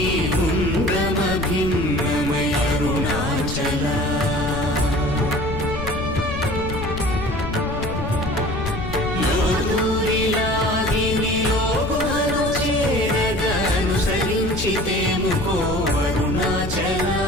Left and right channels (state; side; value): noise; left; rumble, 6 dB below the sound